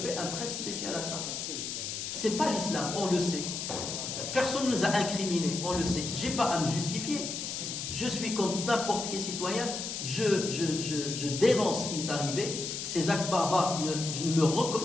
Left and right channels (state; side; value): noise; left; hiss, 5 dB below the sound